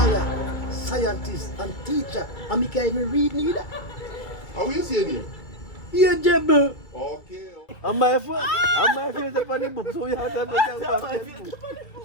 scientist, and teacher. And me can't even read neither. How you saying him? Ageable. Okay. And my phone is up on the book, so you have to understand.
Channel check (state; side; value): late; right; 2.3 ms